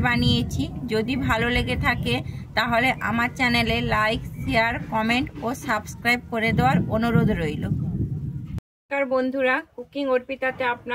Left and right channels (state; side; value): identical; both; correlation 1.00